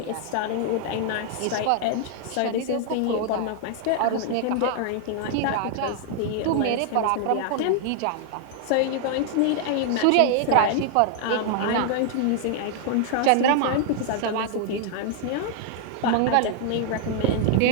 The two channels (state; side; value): different; both; correlation 0.00